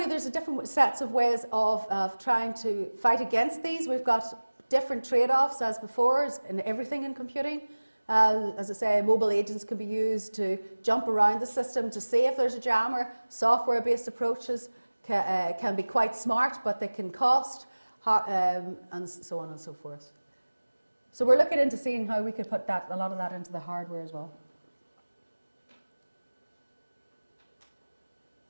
there's a different sets of ways of trying to fight against these. We've got different trade-offs as before, as in everything in computing. As I say, mobile agents can be used to jump around the system to see if there's a jammer. Software-based approaches can be quite smart, but they can cost, and so on and so forth. So we're looking into seeing how we could put a lot of that into the hardware as well.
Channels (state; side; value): inverted; both; correlation -1.00